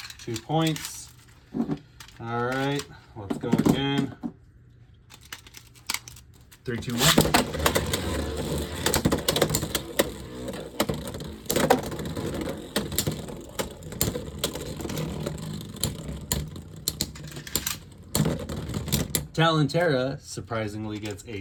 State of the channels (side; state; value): both; identical; correlation 1.00